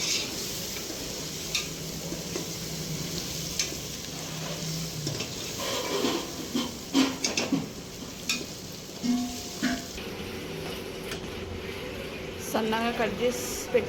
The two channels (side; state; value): both; identical; correlation 1.00